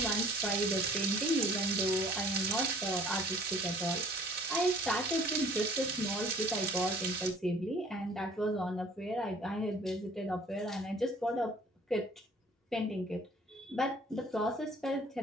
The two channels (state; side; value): normal; both; correlation 0.53